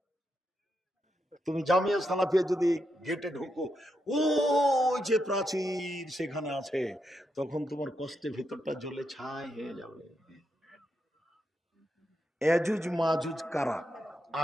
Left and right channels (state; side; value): normal; both; correlation 0.83